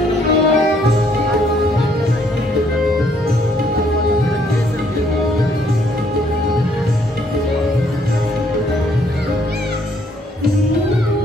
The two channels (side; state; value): both; normal; correlation 0.67